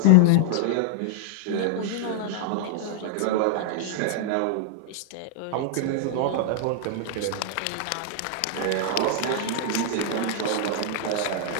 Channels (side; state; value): both; different; correlation 0.00